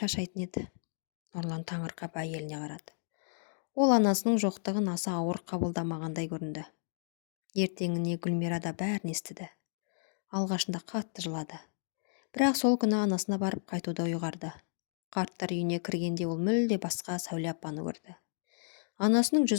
еді. Нұрлан таңырқап әйеліне қарады. Ол анасының жоқтығын аса ауыр қабылдамағандай көрінді. Ертеңіне Гүлмира да бәрін естіді. Алғашында қатты жылады. Бірақ сол күні анасына барып қайтуды ұйғарды. Қарттар үйіне кіргенде ол мүлде басқа Сәуле апаны көрді. Анасының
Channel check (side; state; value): right; silent; digital silence